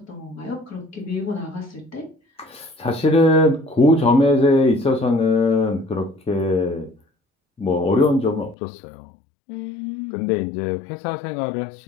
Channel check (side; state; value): right; drops out; at 8.6 s